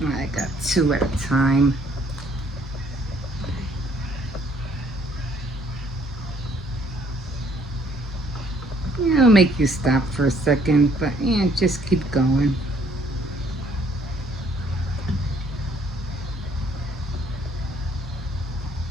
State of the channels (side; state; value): both; normal; correlation 0.63